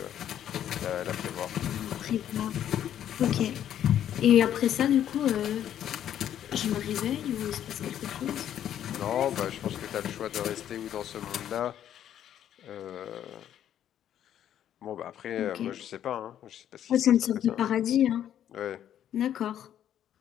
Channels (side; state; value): right; quieter; 10.6 dB